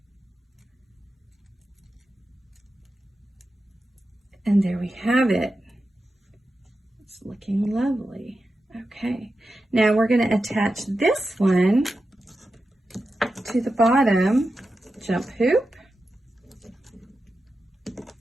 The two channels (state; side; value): normal; both; correlation 0.91